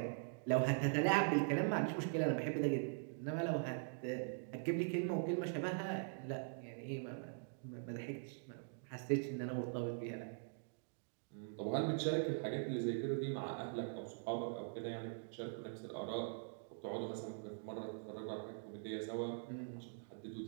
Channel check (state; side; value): silent; left; digital silence